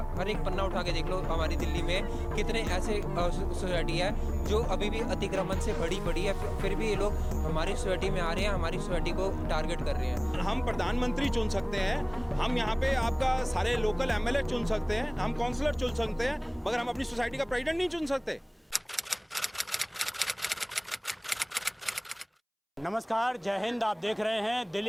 हर एक पन्ना उठा के देख लो। हमारी दिल्ली में कितने ऐसे सोसाइटी है जो अभी भी अतिक्रमण से बड़ी है, फिर भी ये लोग हमारी सोसाइटी में आ रहे हैं, हमारी सोसाइटी को टारगेट कर रहे हैं। हम प्रधानमंत्री चुन सकते हैं, हम यहाँ पे आपका सारे लोकल एमएलए चुन सकते हैं, हम काउंसलर चुन सकते हैं, मगर हम अपनी सोसाइटी का प्रेसिडेंट नहीं चुन सकते। नमस्कार, जय हिंद। आप देख रहे हैं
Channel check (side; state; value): both; identical; correlation 1.00